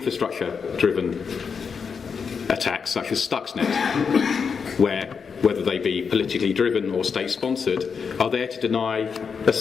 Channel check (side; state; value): right; quieter; 6.0 dB